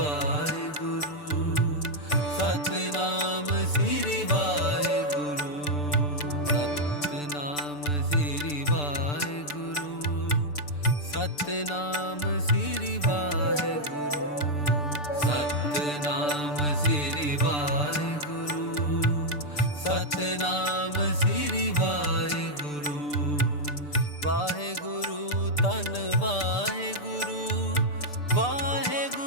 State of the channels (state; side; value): late; right; 6.8 ms